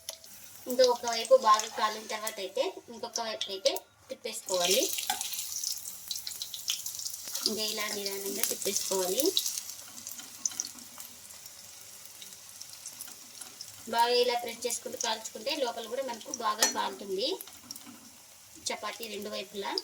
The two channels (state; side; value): identical; both; correlation 1.00